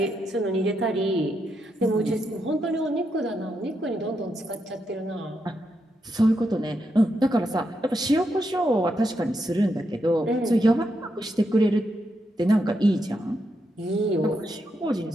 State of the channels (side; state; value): both; normal; correlation 0.82